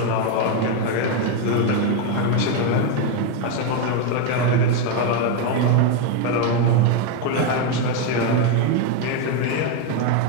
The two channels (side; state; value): both; different; correlation 0.02